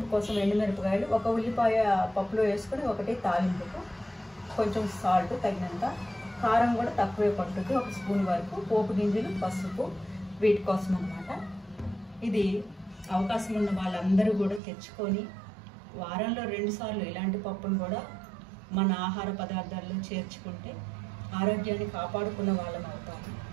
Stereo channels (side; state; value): left; drops out; at 14.6 s